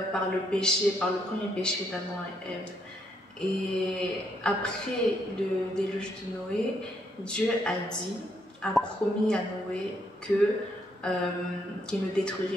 par le péché, par le premier péché d'Adam et Ève. Et après le déluge de Noé, Dieu a promis à Noé qu'il ne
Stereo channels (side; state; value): both; normal; correlation 0.75